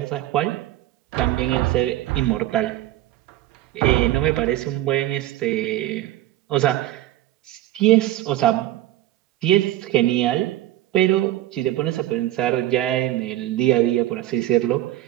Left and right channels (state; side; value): quieter; left; 14.7 dB